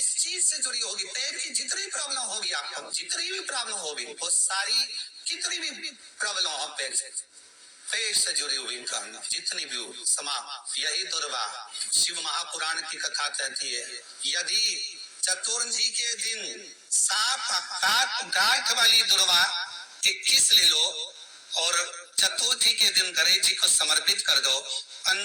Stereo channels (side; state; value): both; identical; correlation 1.00